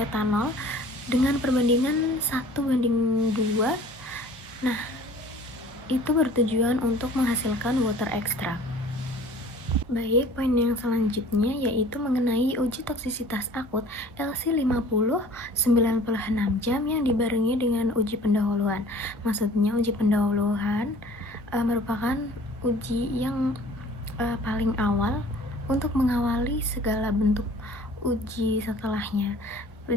dengan perbandingan 1:2. Nah, itu bertujuan untuk menghasilkan water extract. Baik, poin yang selanjutnya yaitu mengenai uji toksisitas akut LC50 96 jam yang dibarengi dengan uji pendahuluan. Maksudnya uji pendahuluan merupakan uji yang paling awal untuk mengawali segala bentuk uji setelahnya.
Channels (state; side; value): normal; both; correlation 0.48